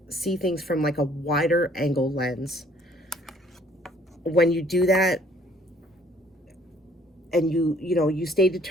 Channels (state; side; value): normal; both; correlation 0.60